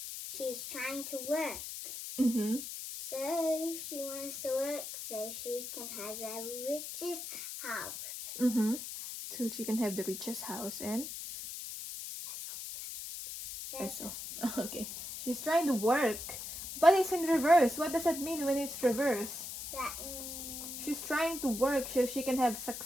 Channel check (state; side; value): noise; left; hiss, 8 dB below the sound